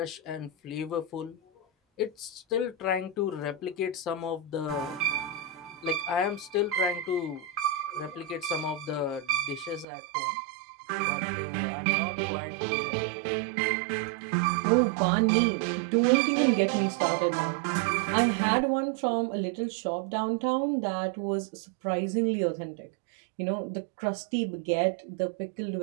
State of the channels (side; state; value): left; drops out; at 9.9 s